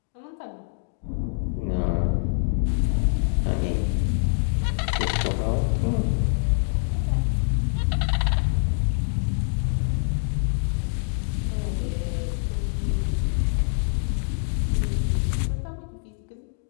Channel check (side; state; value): right; silent; digital silence